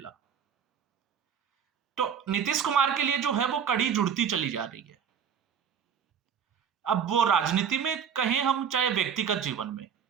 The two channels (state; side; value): quieter; left; 7.7 dB